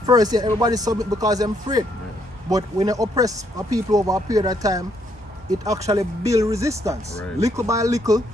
first, yeah, everybody submit because they're afraid. But when you oppress a people over a period of time, it actually build resistance. Right. Little by little,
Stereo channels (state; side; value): normal; both; correlation 0.72